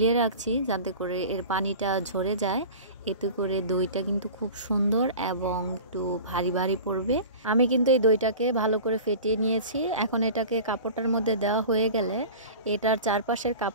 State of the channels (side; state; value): both; inverted; correlation -0.37